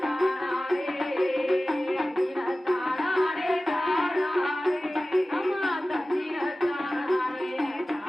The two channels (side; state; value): both; normal; correlation 0.96